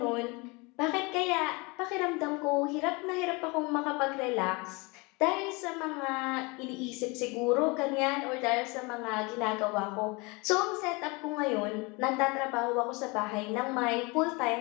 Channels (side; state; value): right; quieter; 27.0 dB